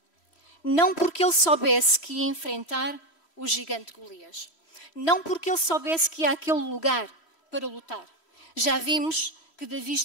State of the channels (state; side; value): late; right; 3.1 ms